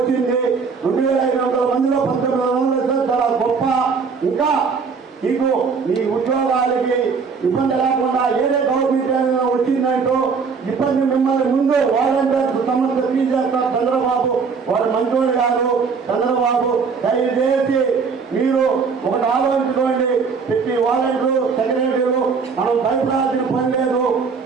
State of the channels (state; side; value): quieter; left; 5.4 dB